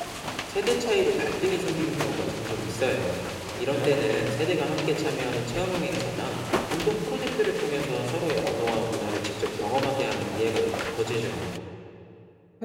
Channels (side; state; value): both; identical; correlation 1.00